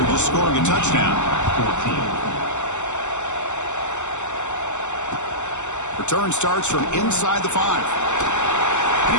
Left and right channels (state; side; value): late; right; 0.84 ms